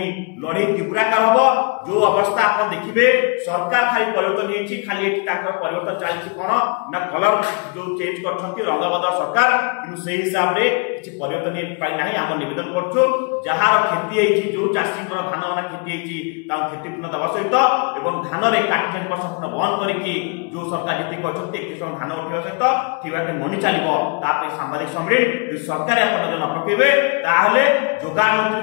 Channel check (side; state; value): right; quieter; 32.6 dB